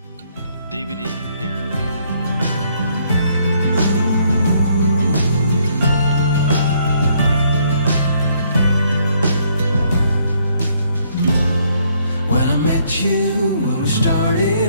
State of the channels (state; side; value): inverted; both; correlation -0.68